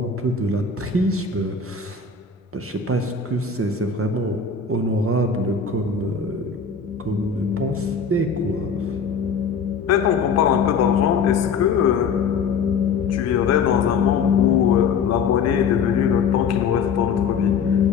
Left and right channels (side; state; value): right; quieter; 5.7 dB